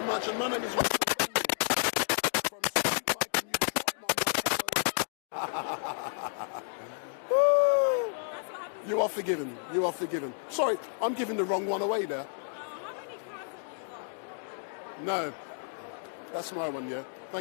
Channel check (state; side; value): silent; right; digital silence